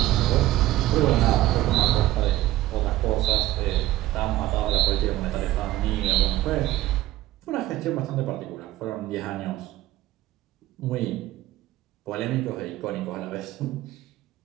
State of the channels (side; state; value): left; quieter; 15.7 dB